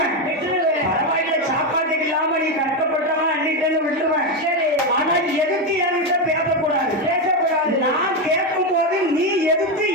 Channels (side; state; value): both; normal; correlation 0.09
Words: பரவாயில்ல, சாப்பாட்டுக்கு இல்லாம நீ கஷ்டப்பட்டவன் அள்ளிட்டேன்னு விட்டுருவேன். ஆனா எதுக்கு என்கிட்ட பேசக்கூடாது? நான் கேட்கும் போது நீ எதுக்கு